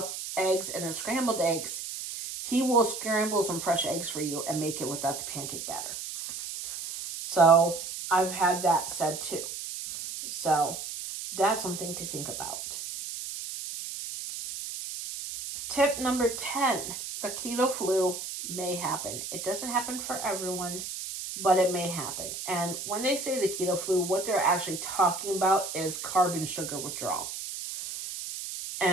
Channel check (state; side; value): noise; right; hiss, 7 dB below the sound